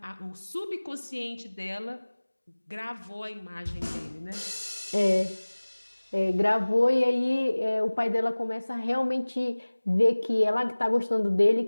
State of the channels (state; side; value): inverted; both; correlation -1.00